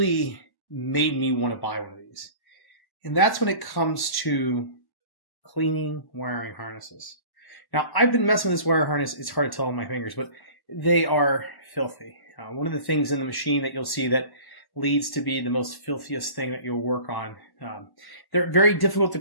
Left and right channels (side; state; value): right; late; 1.1 ms